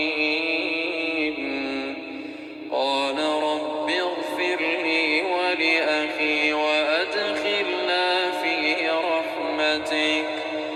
قال رب اغفر لي ولأخي وأدخلنا في رحمتك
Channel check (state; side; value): identical; both; correlation 1.00